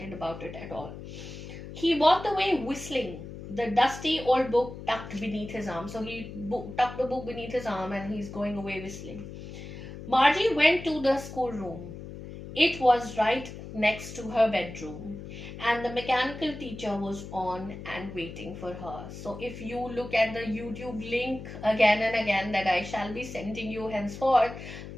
about it at all. He walked away whistling, the dusty old book tucked beneath his arm. So he tucked the book beneath his arm and he's going away whistling. Margie went to the schoolroom. It was right next to her bedroom, and the mechanical teacher was on and waiting for her. So, if you look at the YouTube link again and again that I shall be sending you henceforth,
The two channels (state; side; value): noise; left; hum, 11 dB below the sound